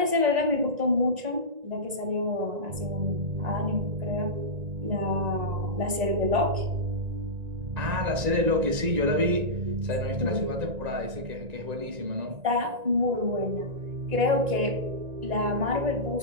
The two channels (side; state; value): left; late; 1.9 ms